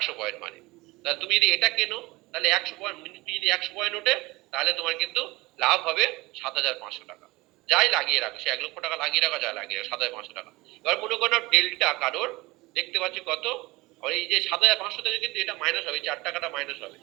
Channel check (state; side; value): quieter; left; 21.4 dB